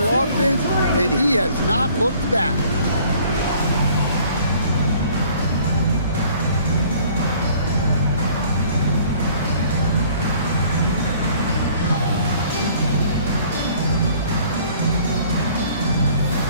and he has not looked back.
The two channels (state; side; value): inverted; both; correlation -0.55